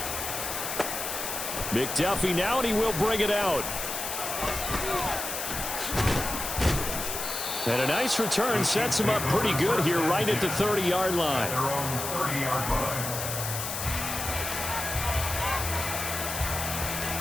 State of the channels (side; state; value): left; noise; hiss, 4 dB below the sound